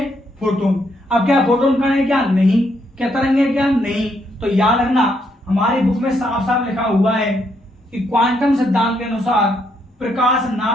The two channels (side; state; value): both; normal; correlation 0.75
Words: फोटोन। अब क्या फोटोन कण है, क्या नहीं, क्या तरंग है, क्या नहीं। तो याद रखना हमारी बुक में साफ साफ लिखा हुआ है कि क्वांटम सिद्धांत के अनुसार प्रकाश